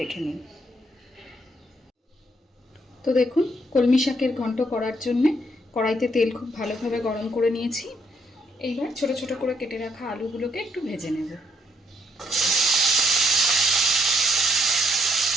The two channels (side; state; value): both; normal; correlation 0.72